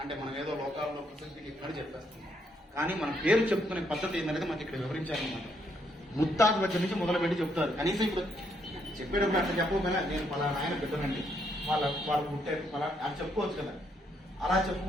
అంటే మనం ఏదో లోకాల్లో ప్రసిద్ధికి ఇక్కడ చెప్పేస్తాం. కానీ మన పేరు చెప్పుకునే పద్ధతి ఏంటనేది మనకి ఇక్కడ వివరించాలన్నమాట. ముత్తాత దగ్గర నుంచి మొదలుపెట్టి చెప్తారు. కనీసం ఇప్పుడు చెప్పేటప్పుడు అట్లా చెప్పకపోయినా నేను పలానా ఆయన బిడ్డనండి, వాళ్ళు పుట్టారు పలా అని చెప్పుకోవచ్చు కదా. అలా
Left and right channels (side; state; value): both; normal; correlation 0.74